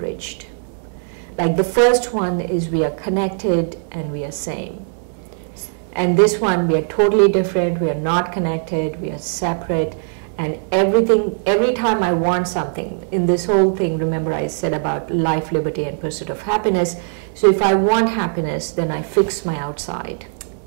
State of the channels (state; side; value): silent; left; digital silence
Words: Like the first one is we are connected and we are same. And this one, we are totally different, we are not connected, we are separate, and everything, every time I want something, in this whole thing, remember I said about life, liberty, and pursuit of happiness. So if I want happiness, then I fix my outside.